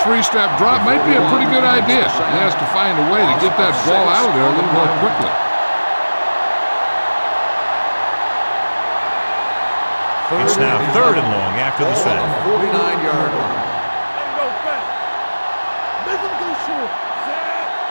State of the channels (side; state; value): both; inverted; correlation -1.00